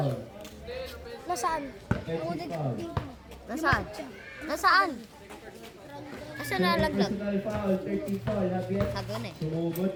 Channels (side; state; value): both; identical; correlation 1.00